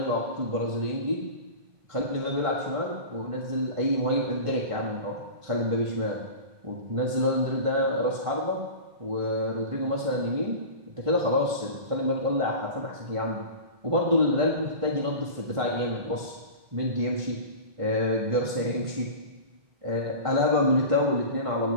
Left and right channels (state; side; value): late; left; 1.5 ms